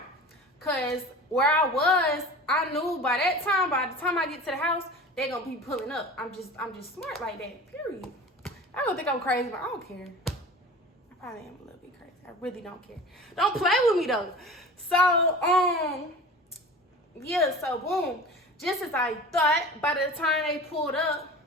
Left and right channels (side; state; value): both; normal; correlation 0.37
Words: Because where I was, I knew by the time I get to the house, they gonna be pulling up. I'm just smart like that, period. I don't think I'm crazy, but I don't care. I probably am a little bit crazy. I really don't care. Don't play with me though. So, yeah, so boom. Just as I thought, by the time they pulled up,